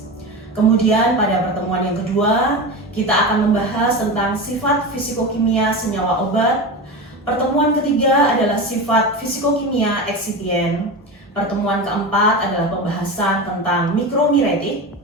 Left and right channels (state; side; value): normal; both; correlation 0.24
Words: Kemudian pada pertemuan yang kedua, kita akan membahas tentang sifat fisikokimia senyawa obat. Pertemuan ketiga adalah sifat fisikokimia eksipien. Pertemuan keempat adalah pembahasan tentang mikromiretik.